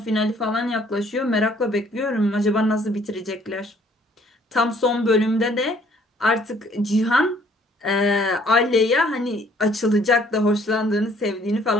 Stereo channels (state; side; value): normal; both; correlation 0.61